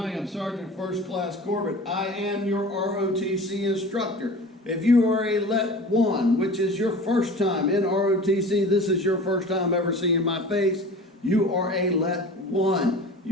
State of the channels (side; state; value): both; normal; correlation 0.39